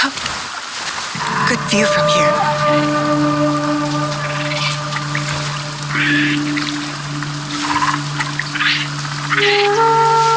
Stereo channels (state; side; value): identical; both; correlation 1.00